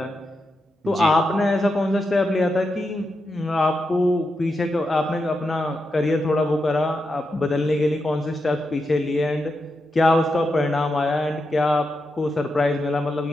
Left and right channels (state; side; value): normal; both; correlation 0.86